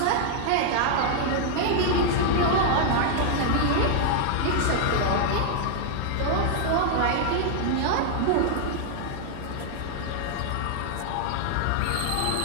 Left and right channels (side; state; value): both; different; correlation 0.00